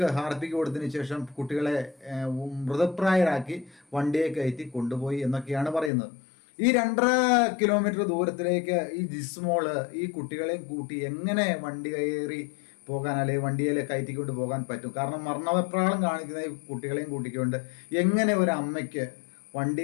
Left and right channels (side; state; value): right; drops out; at 5.9 s